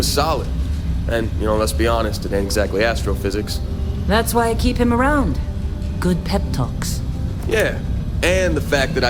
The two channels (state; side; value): identical; both; correlation 1.00